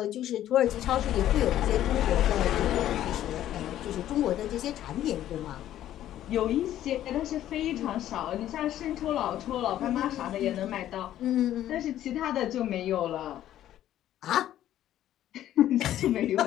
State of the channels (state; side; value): quieter; right; 12.3 dB